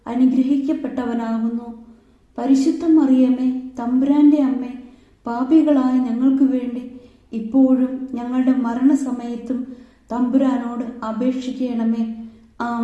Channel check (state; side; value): identical; both; correlation 1.00